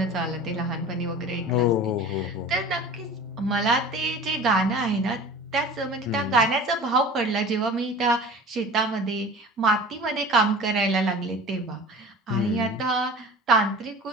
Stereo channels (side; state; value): both; normal; correlation 0.39